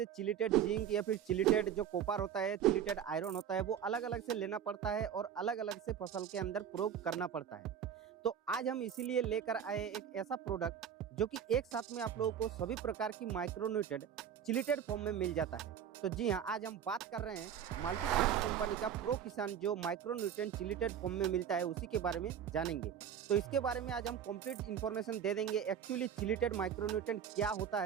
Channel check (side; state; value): left; quieter; 8.8 dB